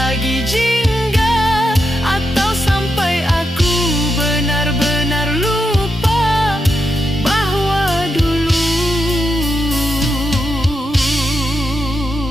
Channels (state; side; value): normal; both; correlation 0.86